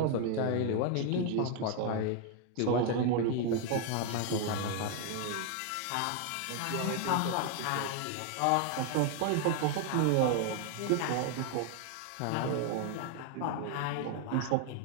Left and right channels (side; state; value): both; different; correlation 0.00